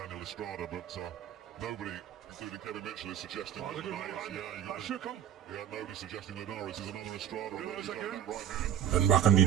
Estrada, but nobody, including Kevin Mitchell, is suggesting that That shook him. Yeah, nobody's suggesting Linares is another Estrada. Right hand. Dan bahkan di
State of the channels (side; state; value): left; quieter; 10.0 dB